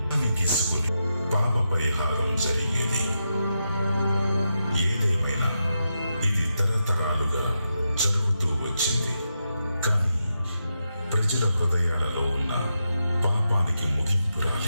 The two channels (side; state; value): both; inverted; correlation -0.86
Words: గిసుకుని పాప పరిహారం జరిగేది. ఏదేమైనా ఇది తరతరాలుగా జరుగుతూ వచ్చింది. కానీ ప్రజల హృదయాలలో ఉన్న పాపానికి ముగింపు